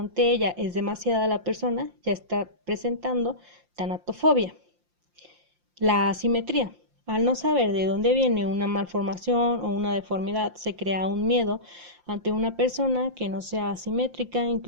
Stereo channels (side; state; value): left; late; 5.7 ms